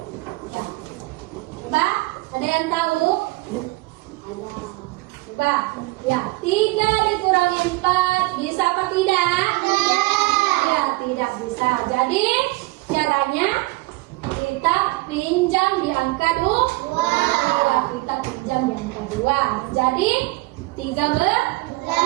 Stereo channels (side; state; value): left; quieter; 22.3 dB